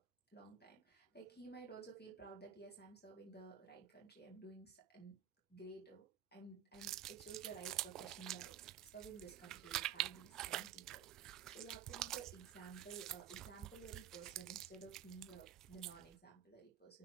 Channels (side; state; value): left; quieter; 9.9 dB